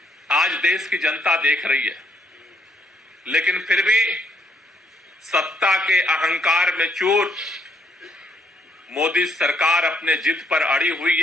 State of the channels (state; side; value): normal; both; correlation 0.70